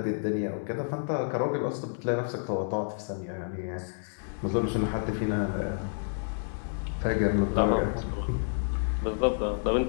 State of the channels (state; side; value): silent; right; 58 dB below the other